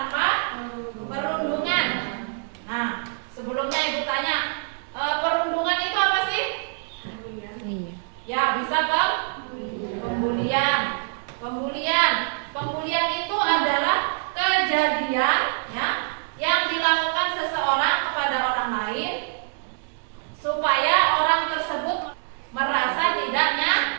perundungan. Nah, sebelumnya Ibu tanya, perundungan itu apa sih? Ya, bisa Pembulian itu adalah kejadian ya yang dilakukan seseorang kepada orang lain supaya orang tersebut merasa tidak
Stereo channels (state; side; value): silent; left; 62 dB below the other